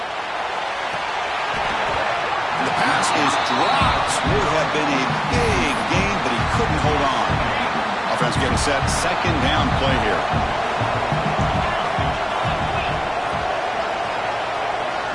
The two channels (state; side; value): identical; both; correlation 1.00